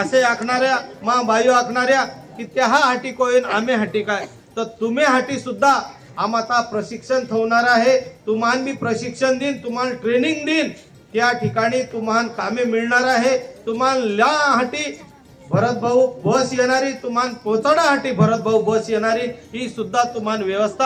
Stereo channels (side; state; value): both; identical; correlation 1.00